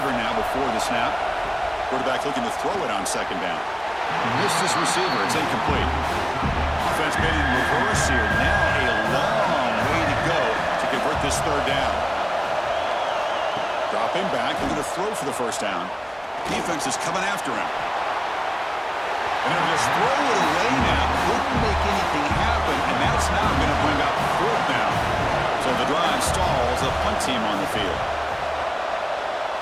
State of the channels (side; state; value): both; identical; correlation 1.00